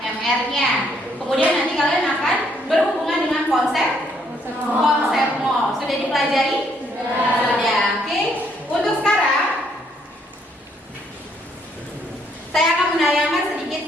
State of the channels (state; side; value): normal; both; correlation 0.70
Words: Kemudian nanti kalian akan berhubungan dengan konsep mol. Sudah dipelajari? Sudah. Oke. Untuk sekarang saya akan menayangkan